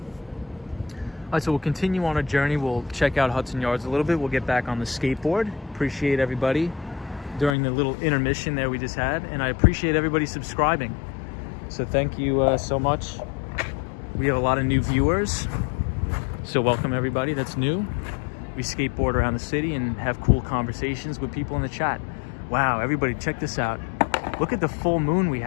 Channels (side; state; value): right; drops out; at 7.6 s